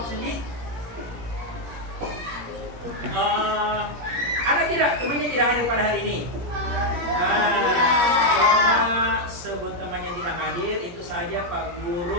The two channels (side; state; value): left; late; 17 ms